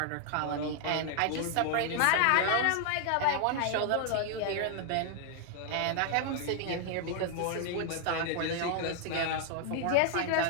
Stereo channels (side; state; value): both; different; correlation 0.00